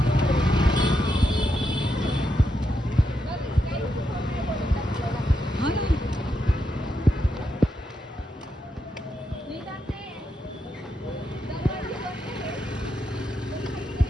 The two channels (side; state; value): both; normal; correlation 0.83